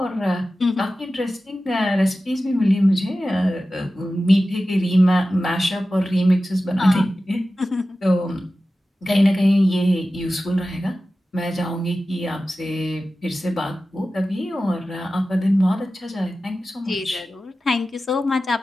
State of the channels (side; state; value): both; normal; correlation 0.94